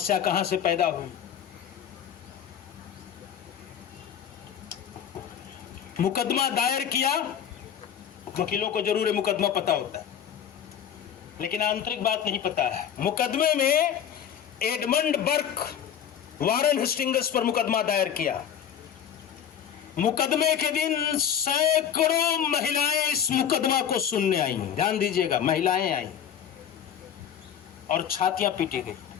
कहां से पैदा हुई? मुकदमा दायर किया, वकीलों को जरूर मुकदमा पता होता है, लेकिन आंतरिक बात नहीं पता है। मुकदमे में एडमंड बर्क वारन हेस्टिंग्स पर मुकदमा दायर किया। मुकदमे के दिन सैकड़ों महिलाएं इस मुकदमा को सुनने आई। ध्यान दीजिएगा, महिलाएं आई और छातियां पीटी गई।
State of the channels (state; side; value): quieter; right; 9.0 dB